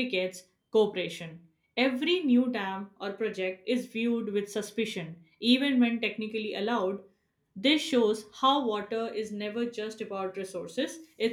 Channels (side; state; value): both; identical; correlation 1.00